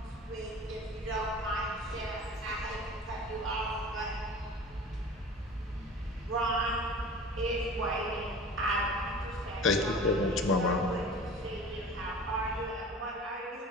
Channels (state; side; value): normal; both; correlation 0.40